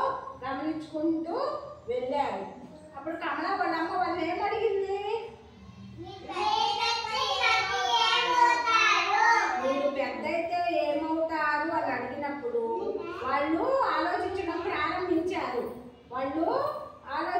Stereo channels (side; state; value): both; identical; correlation 1.00